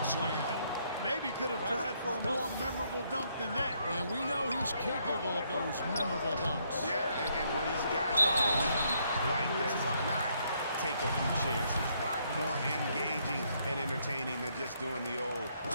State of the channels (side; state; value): both; inverted; correlation -0.72